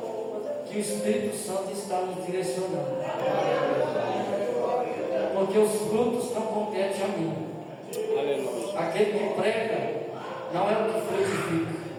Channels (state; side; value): identical; both; correlation 1.00